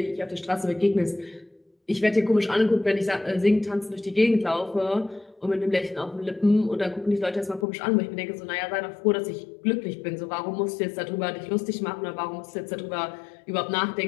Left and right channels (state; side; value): drops out; right; at 7.7 s